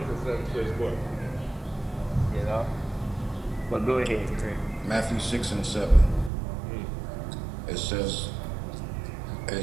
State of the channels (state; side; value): drops out; left; at 6.3 s